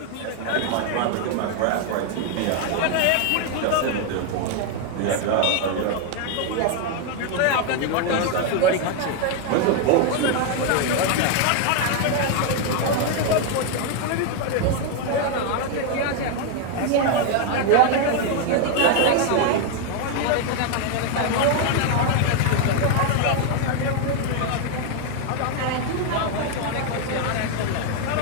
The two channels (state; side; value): different; both; correlation 0.01